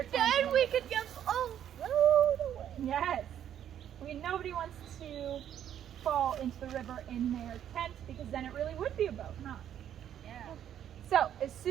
and tent. then we could just float away. Yes. I mean, nobody wants to fall into the river in their tent, because then it really would be a boat, huh? Yeah. So, as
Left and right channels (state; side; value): quieter; left; 10.1 dB